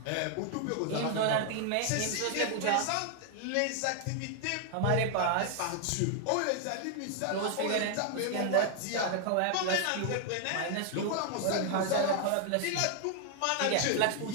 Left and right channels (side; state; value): both; different; correlation 0.00